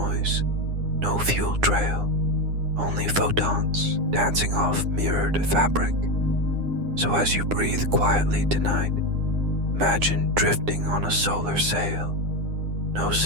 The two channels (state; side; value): late; left; 9.8 ms